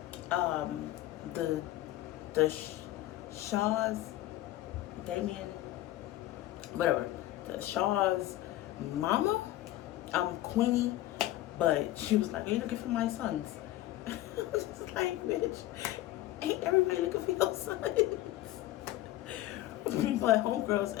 the Shaw's, Damien, whatever, the Shaw's mama, Queenie, but she was like, "Are you looking for my sons?" I was just like, "Bitch, ain't everybody looking for your sons?" But homegirl's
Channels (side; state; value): right; quieter; 15.4 dB